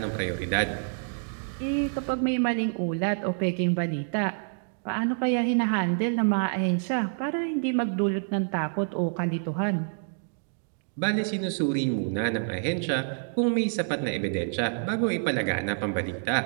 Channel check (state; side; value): silent; left; digital silence